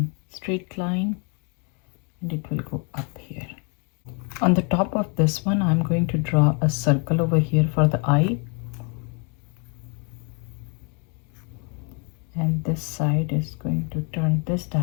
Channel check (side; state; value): right; quieter; 35.4 dB